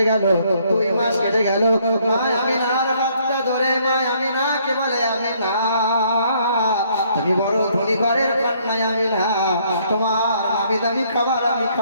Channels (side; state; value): both; inverted; correlation -0.66